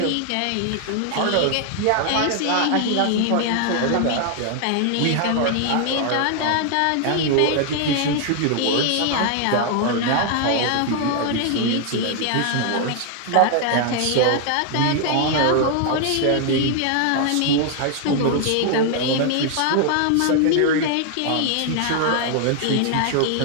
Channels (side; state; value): both; different; correlation 0.00